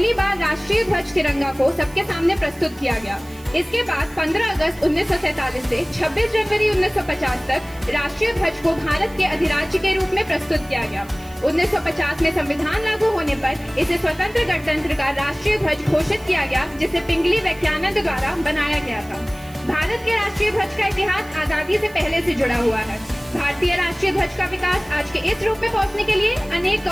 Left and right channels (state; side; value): noise; right; hiss, 23 dB below the sound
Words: बार राष्ट्रीय ध्वज तिरंगा को सबके सामने प्रस्तुत किया गया। इसके बाद 15 अगस्त 1947 से 26 जनवरी 1950 तक राष्ट्रीय ध्वज को भारत के अधिराज्य के रूप में प्रस्तुत किया गया। 1950 में संविधान लागू होने पर इसे स्वतंत्र गणतंत्र का राष्ट्रीय ध्वज घोषित किया गया, जिसे पिंगली वैज्ञानिक द्वारा बनाया गया था। भारत के राष्ट्रीय ध्वज का इतिहास आजादी से पहले से जुड़ा हुआ है। भारतीय राष्ट्रीय ध्वज का विकास आज के इस रूप में पहुंचने के लिए अनेक